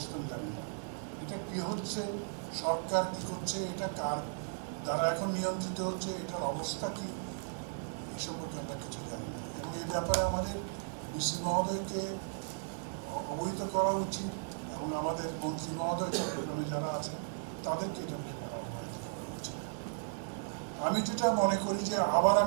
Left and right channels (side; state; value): left; silent; digital silence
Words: জানি না। এটা কী হচ্ছে, সরকার কী করছে, এটা কার দ্বারা এখন নিয়ন্ত্রিত হচ্ছে, এটার অবস্থা কী, এই সম্পর্কে আমরা কিছু জানি না। এবং এই ব্যাপারে আমাদের ডিসি মহোদয়কে অবহিত করা উচিত এবং আমাদের মন্ত্রী মহোদয় চট্টগ্রামে যারা আছেন তাদেরকে এটা অবহিত করা উচিত। আমি যেটা মনে করি যে আবার